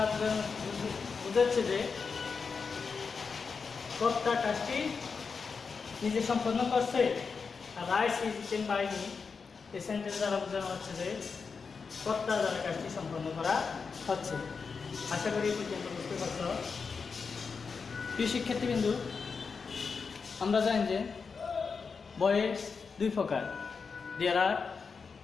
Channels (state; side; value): quieter; right; 5.2 dB